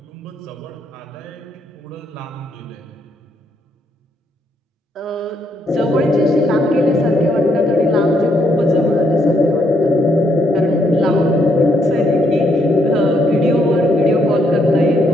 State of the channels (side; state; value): both; normal; correlation 0.74